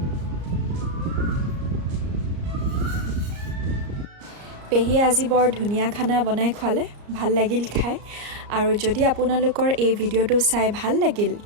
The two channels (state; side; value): late; left; 34 ms